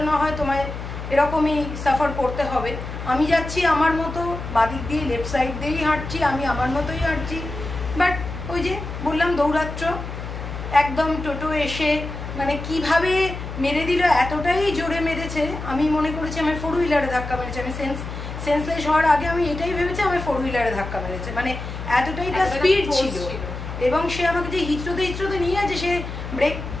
না হয় তোমায় এরকমই সাফার করতে হবে। আমি যাচ্ছি আমার মতো, বাদিক দিয়ে লেফট সাইড দিয়েই হাঁটছি, আমি আমার মতোই হাঁটছি। বাট ওই যে বললাম দৌরাত্ম্য, একদম টোটো এসে মানে কিভাবে মেরে দিল, এতটাই জোরে মেরেছে, আমি মনে করেছি আমার ফোর হুইলারে ধাক্কা মেরেছে। আমি সেন্সলেস হওয়ার আগে আমি এটাই ভেবেছি আমার ফোর হুইলারে ধাক্কা মেরেছে, মানে এতটাই তার স্পিড ছিল। এবং সে আমাকে যে হিচড়োতে নিয়ে আছে, সে ব্রেক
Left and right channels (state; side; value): noise; left; hum, 8 dB below the sound